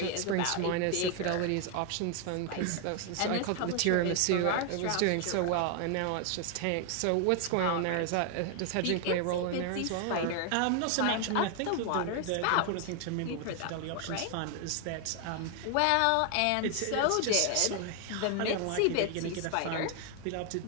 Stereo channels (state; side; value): different; both; correlation 0.00